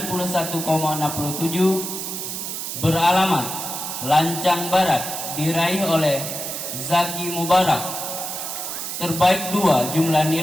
beralamat Lancang Barat, diraih oleh Zaki Mubarak. Terbaik 2, jumlah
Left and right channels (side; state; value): right; noise; hiss, 5 dB below the sound